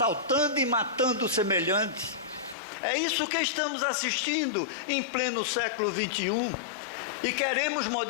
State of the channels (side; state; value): right; drops out; at 2.6 s